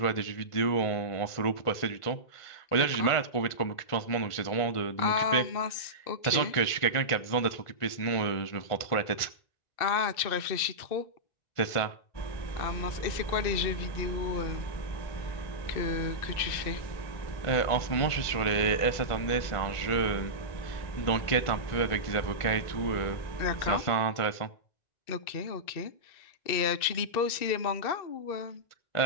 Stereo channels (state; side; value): late; right; 1.5 ms